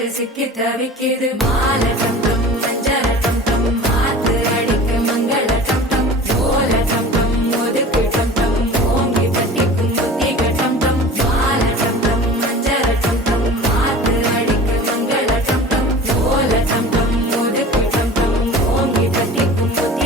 சிக்கி தவிக்கிது மாலை டம் டம் மஞ்சள டம் டம், மாத்து அடிக்க மங்கள டம் டம், ஓல டம் டம் ஒதுக்கு டம் டம், ஓங்கி தட்டிக்கும் புத்திக டம் டம். மாலை டம் டம் மஞ்சள டம் டம், மாத்து அடிக்க மங்கள டம் டம், ஓல டம் டம் ஒதுக்கு டம் டம், ஓங்கி தட்டிக்கும்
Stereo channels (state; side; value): normal; both; correlation 0.39